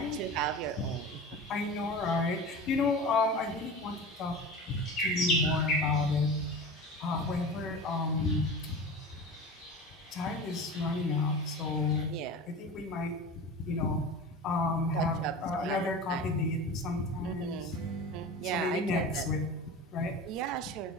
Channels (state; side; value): normal; both; correlation 0.32